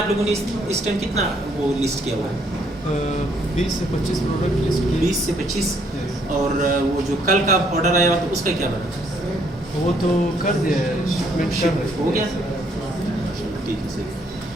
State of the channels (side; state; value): both; normal; correlation 0.68